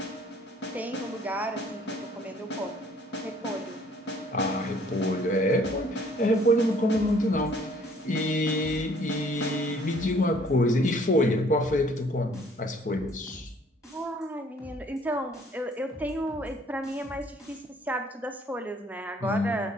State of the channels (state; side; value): normal; both; correlation 0.58